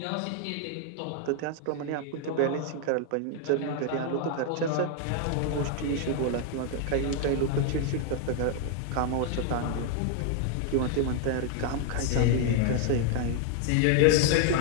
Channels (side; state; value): both; different; correlation 0.00